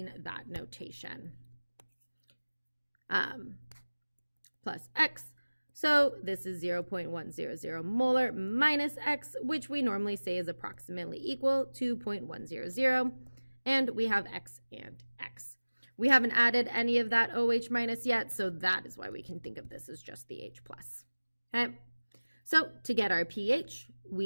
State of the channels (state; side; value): inverted; both; correlation -1.00